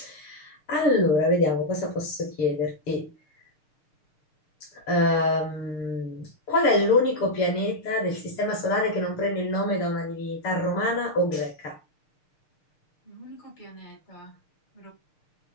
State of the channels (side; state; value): right; late; 6.6 ms